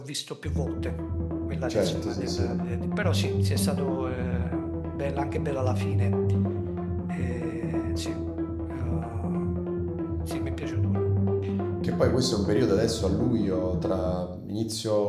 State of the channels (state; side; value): identical; both; correlation 1.00